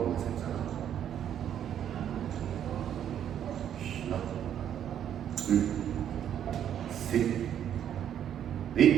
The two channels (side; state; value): left; quieter; 9.8 dB